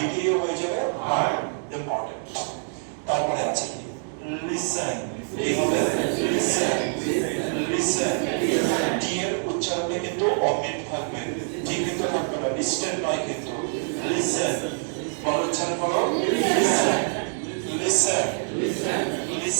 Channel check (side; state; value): left; silent; 57 dB below the other